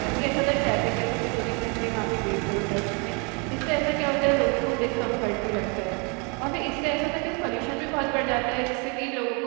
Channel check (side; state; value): left; quieter; 33.4 dB